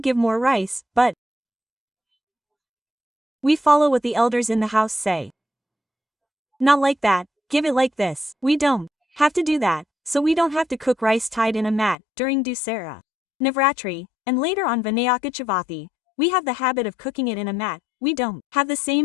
give more rice, but we follow what the elders in the house say. Not like that, give it like this. We don't have to do that, so we don't have to cook rice tied in a mat during Dussehra, Navratri, and later on Vinayaka Chavithi. We have the habit of cooking it in a mat. We don't have the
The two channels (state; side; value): drops out; right; at 12.0 s